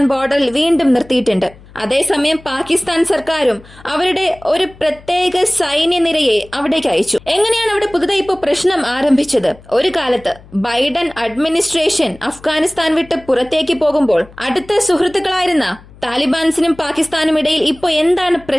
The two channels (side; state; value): left; noise; hum, 23 dB below the sound